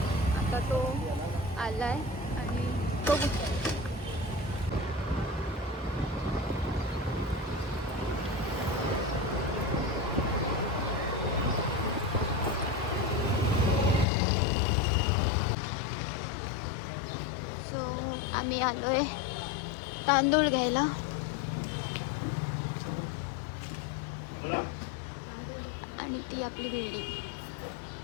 आता तो आला आहे आणि बघू. आम्ही आलो आहे तांदूळ घ्यायला. आणि ती आपली बिल्डिंग.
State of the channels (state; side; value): drops out; right; at 14.1 s